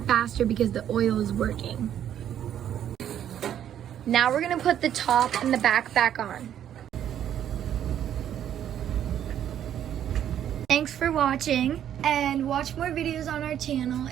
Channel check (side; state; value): left; quieter; 10.2 dB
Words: faster because the oil is working. Now we're gonna put the top and the back on. Thanks for watching, and watch more videos on our channel.